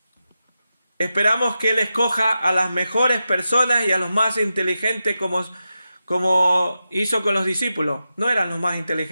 Esperamos que Él escoja a las mejores personas y a los más inteligentes, como hizo con los discípulos. No eran los más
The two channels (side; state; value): both; inverted; correlation -0.90